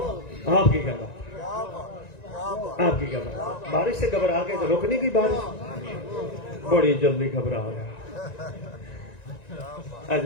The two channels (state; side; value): late; right; 1.9 ms